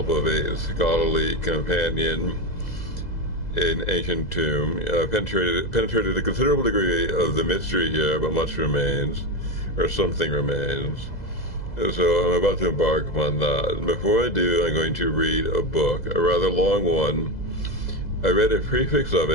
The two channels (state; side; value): late; right; 2.0 ms